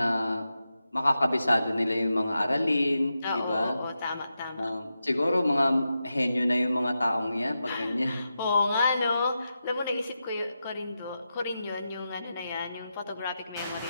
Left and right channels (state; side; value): inverted; both; correlation -0.89